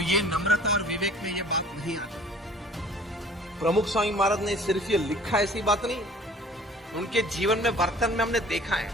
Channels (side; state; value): both; normal; correlation 0.49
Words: ये नम्रता और विवेक में ये बात नहीं आती। प्रमुख स्वामी महाराज ने सिर्फ ये लिखा, ऐसी बात नहीं, उनके जीवन में वर्तन में हमने देखा है।